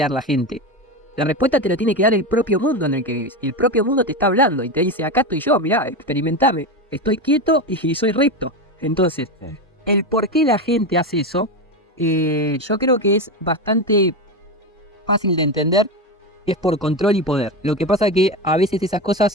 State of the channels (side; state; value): both; normal; correlation 0.18